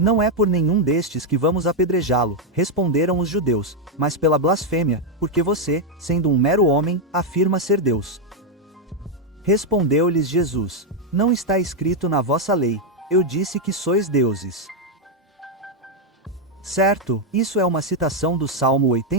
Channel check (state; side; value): normal; both; correlation 0.01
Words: é por nenhum destes que vamos apedrejá-lo, responderam os judeus, mas pela blasfêmia, porque você, sendo um mero homem, afirma ser Deus. Respondeu-lhes Jesus: não está escrito na vossa lei, eu disse que sois deuses. Certo, isso é uma citação do Salmo